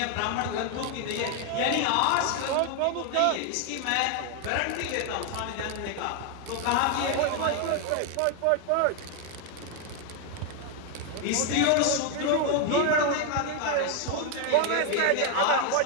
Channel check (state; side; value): different; both; correlation 0.01